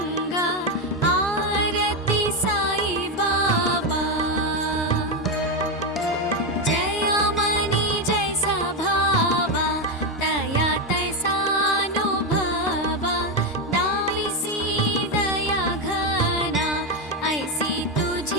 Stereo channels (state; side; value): normal; both; correlation 0.09